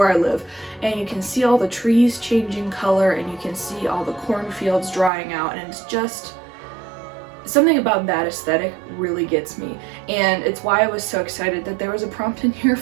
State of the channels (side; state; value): left; drops out; at 5.1 s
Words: I live, and you can see all the trees changing color, and you can see all the cornfields drying out, and it's just something about that aesthetic really gets me. And it's why I was so excited that there was a prompt in here